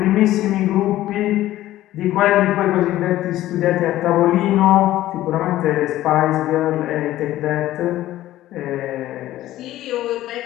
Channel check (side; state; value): right; quieter; 14.6 dB